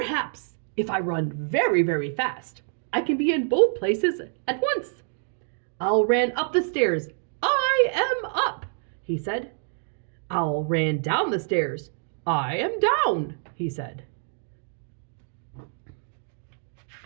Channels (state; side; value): silent; left; digital silence